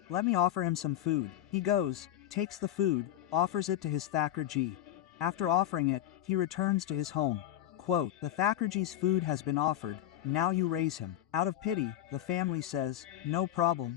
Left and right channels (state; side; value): quieter; right; 12.2 dB